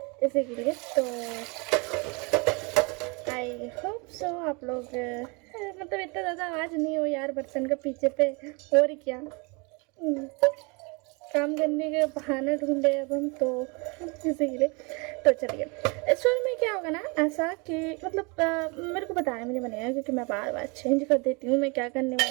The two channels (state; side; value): quieter; left; 30.1 dB